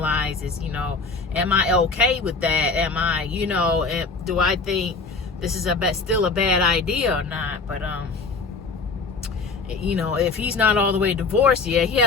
You know, am I okay with that? Am I, you know, do I think this is still a bad idea or not? But you know, if he's not all the way divorced yet, he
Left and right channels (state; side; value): quieter; right; 4.3 dB